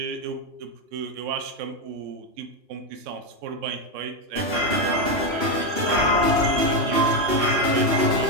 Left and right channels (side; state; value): left; late; 2.8 ms